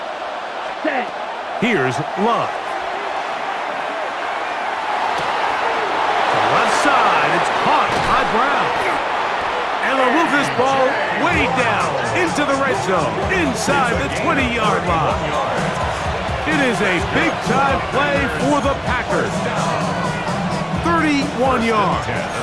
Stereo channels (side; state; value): both; identical; correlation 1.00